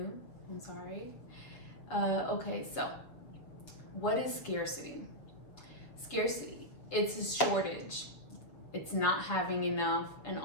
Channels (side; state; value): right; late; 6.8 ms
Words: I'm sorry. Okay, so what is scarcity? Scarcity, it's a shortage. It's not having enough. And